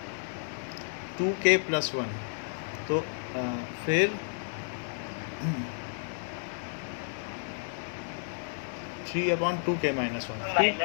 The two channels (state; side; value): silent; right; digital silence